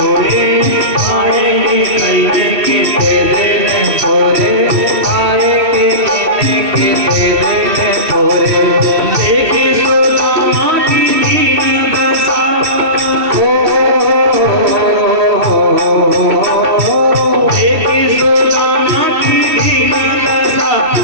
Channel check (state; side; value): late; left; 2.7 ms